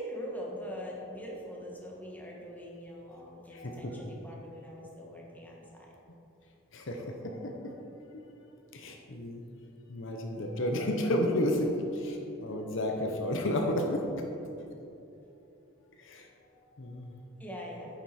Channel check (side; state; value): both; normal; correlation 0.34